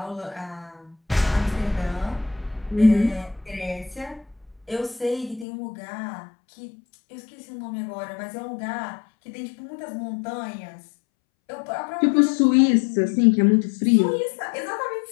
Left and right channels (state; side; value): drops out; right; at 5.5 s